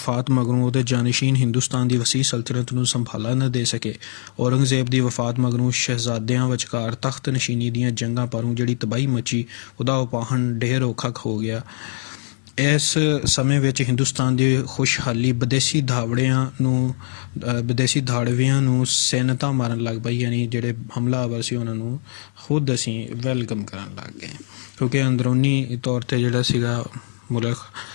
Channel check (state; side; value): silent; right; digital silence